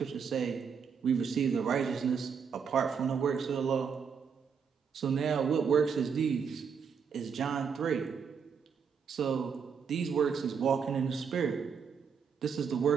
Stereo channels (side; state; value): left; quieter; 6.4 dB